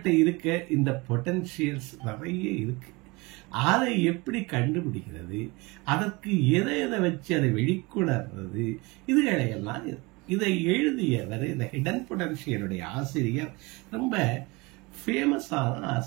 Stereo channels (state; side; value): quieter; left; 25.1 dB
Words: இருக்க இந்த பொட்டன்ஷியல்ஸ் நிறைய இருக்கு. அதை எப்படி கண்டுபிடிக்கிறது, அதற்கு எதை எதை வச்சு அதை வெளிக்கொணர்றது, இதுகளையெல்லாம் இதை எழுதியவர் இந்த ஹிடன் பொட்டன்ஷியலுடைய ஆசிரியர் ரொம்ப ஃபேமஸான